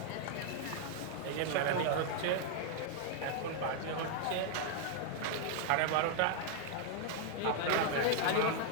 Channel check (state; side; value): different; both; correlation 0.00